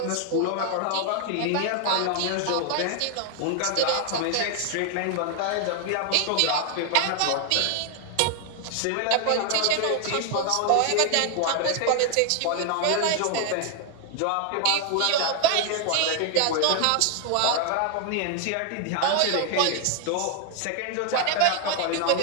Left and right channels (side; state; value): both; different; correlation 0.00